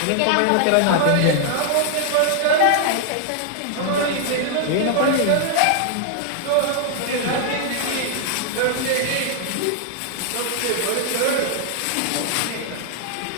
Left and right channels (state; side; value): different; both; correlation -0.01